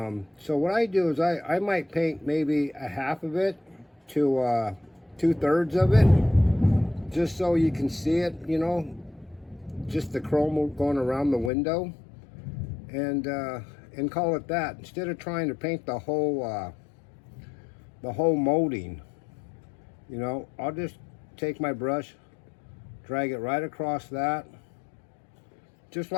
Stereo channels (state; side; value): drops out; right; at 11.5 s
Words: what I do is I might paint maybe a half of it to 2/3 of it, just so you can see it, you know, just the chrome going around the window, and call it that, instead of trying to paint the whole molding. You know, I'll just take my brush, drag it right across that, just